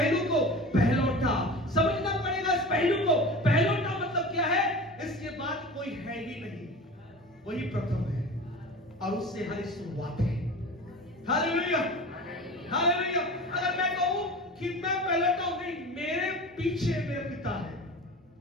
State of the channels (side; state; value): both; normal; correlation 0.35